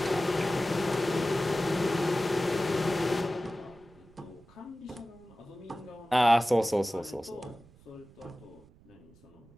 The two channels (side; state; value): right; noise; rumble, 26 dB below the sound